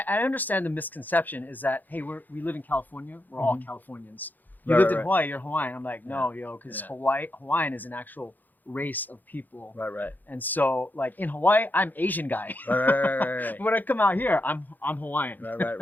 understand the misconception is that, hey, we live in California. We're all Californians. You lived in Hawaii, you're Hawaiian. I'm like, no, because Hawaiian is an actual race of people. Right. And so, like in Hawaii, I'm Asian guy. Right. When I come out here, I'm Hawaiian.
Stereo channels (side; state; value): right; late; 0.085 ms